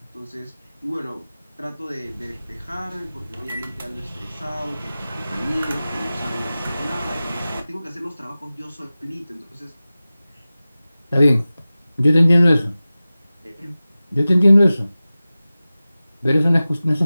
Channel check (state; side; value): inverted; both; correlation -0.96